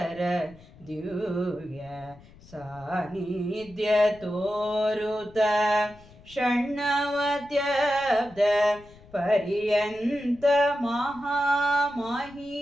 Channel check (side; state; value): left; noise; rumble, 23 dB below the sound